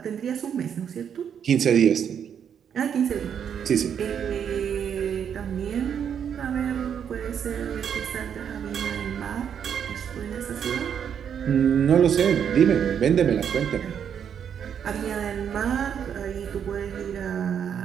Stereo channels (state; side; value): quieter; left; 8.2 dB